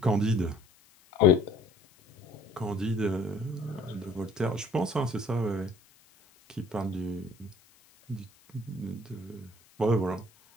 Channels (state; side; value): noise; left; hiss, 29 dB below the sound